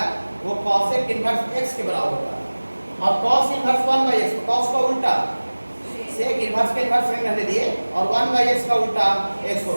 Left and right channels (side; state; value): both; inverted; correlation -1.00